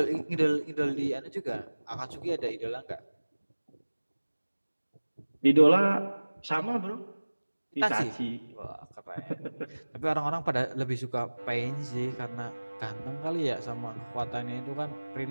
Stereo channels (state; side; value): inverted; both; correlation -1.00